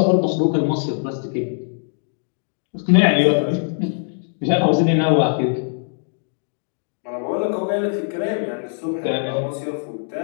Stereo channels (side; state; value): right; silent; digital silence